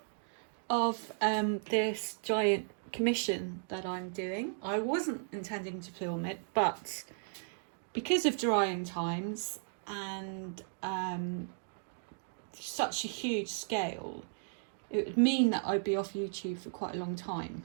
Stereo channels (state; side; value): silent; left; digital silence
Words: of this giant commission that I'm doing. I wasn't intending to film it, but because of drying times and such a huge scale, it would mean that I'd be off YouTube for quite a long time.